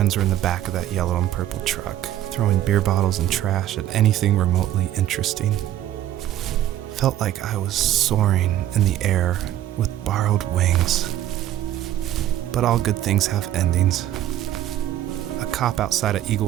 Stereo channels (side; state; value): left; quieter; 12.7 dB